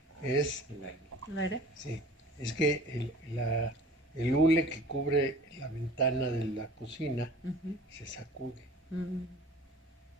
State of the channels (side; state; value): both; normal; correlation 0.46